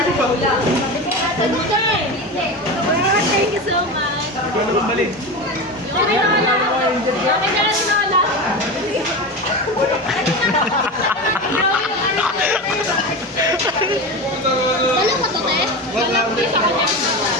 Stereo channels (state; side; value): normal; both; correlation 0.24